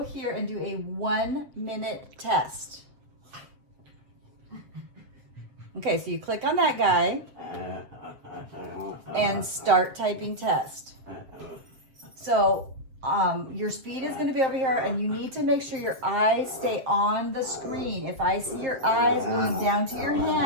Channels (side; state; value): left; late; 7.8 ms